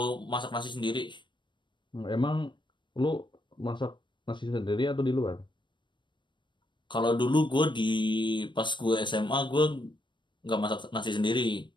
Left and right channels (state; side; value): late; right; 0.23 ms